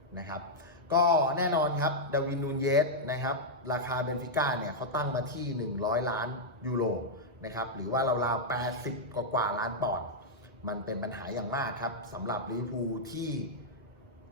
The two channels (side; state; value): both; normal; correlation -0.06